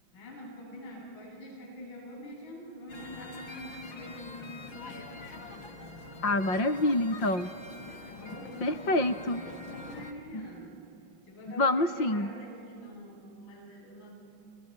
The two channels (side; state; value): right; late; 6.0 ms